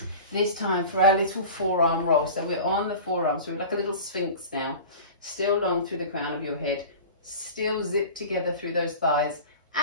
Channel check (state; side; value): inverted; both; correlation -0.36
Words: This time for our little forearm roll. So we're on the forearm, so we're like a little sphinx now. Still long through the crown of your head. Still zip together through those thighs